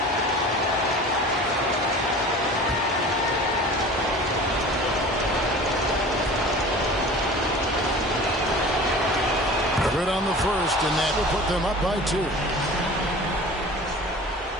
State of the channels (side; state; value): both; normal; correlation 0.40